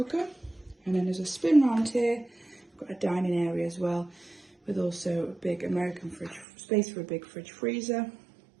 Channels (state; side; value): drops out; left; at 6.5 s